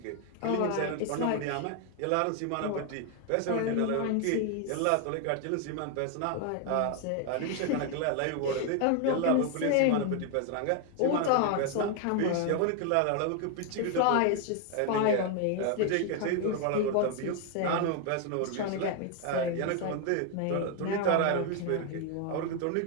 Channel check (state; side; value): different; both; correlation 0.01